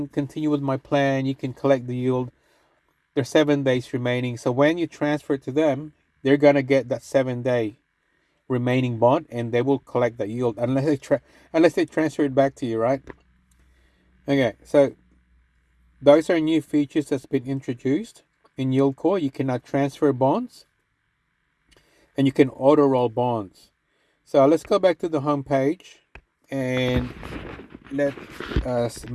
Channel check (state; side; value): identical; both; correlation 1.00